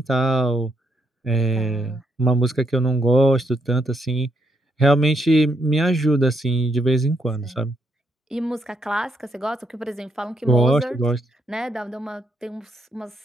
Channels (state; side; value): normal; both; correlation 0.76